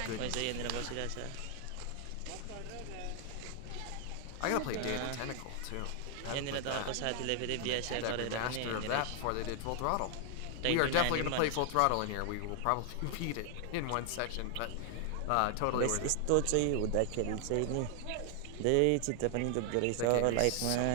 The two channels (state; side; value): different; both; correlation 0.00